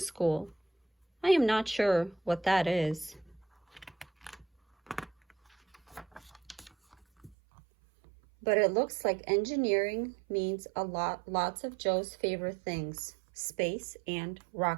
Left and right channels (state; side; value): drops out; left; at 7.4 s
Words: I am not sure what that is. But it looks like engineering means lots of Joe's favorite things, space and